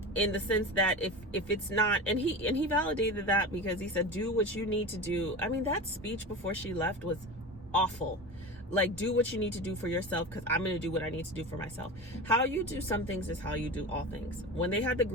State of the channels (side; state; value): both; normal; correlation 0.28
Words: in the sense that if it's not, and he validated that, because he said, do what you need to do. I mean, that speech before she left was awful. Like, do what you need to do for yourself, because I'm going to do what I need to do for myself. How you do some things is how you do all things. When they had the